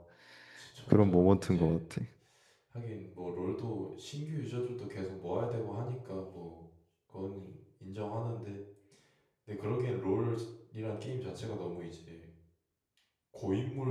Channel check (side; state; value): both; identical; correlation 1.00